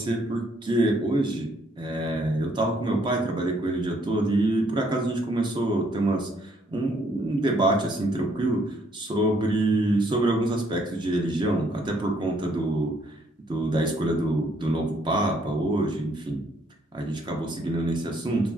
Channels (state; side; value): normal; both; correlation 0.68